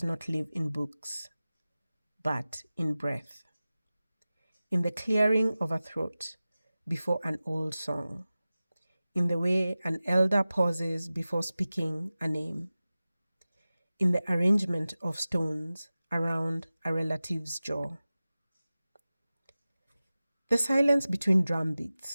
not live in books, but in breath, in the clearing of a throat before an old song, in the way an elder pauses before speaking a name, in the arrangement of stones around a relative's jaw. The silence between drum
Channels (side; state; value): both; inverted; correlation -0.96